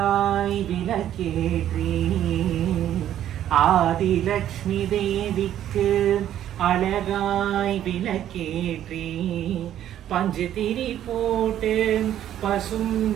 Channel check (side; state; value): left; quieter; 11.3 dB